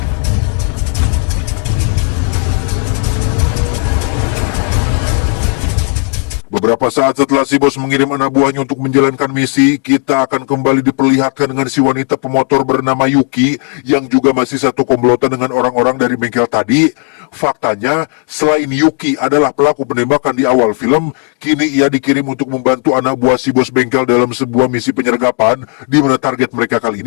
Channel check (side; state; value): right; quieter; 39.6 dB